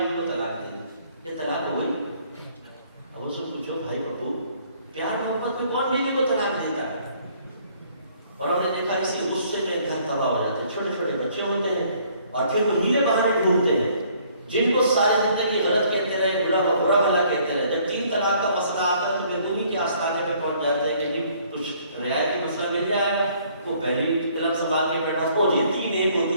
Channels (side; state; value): both; inverted; correlation -0.61